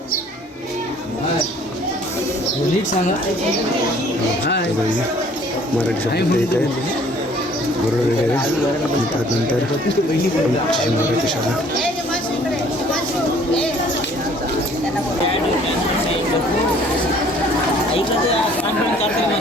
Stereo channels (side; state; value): both; normal; correlation 0.56